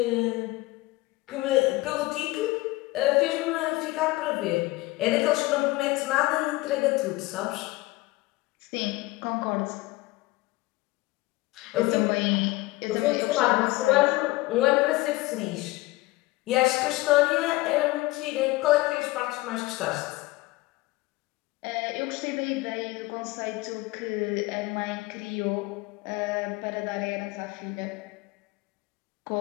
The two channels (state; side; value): quieter; right; 20.4 dB